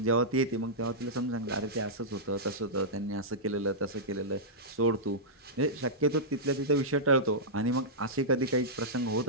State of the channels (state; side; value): normal; both; correlation -0.13